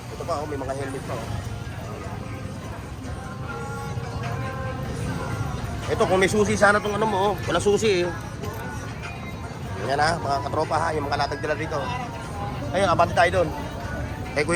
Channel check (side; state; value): both; identical; correlation 1.00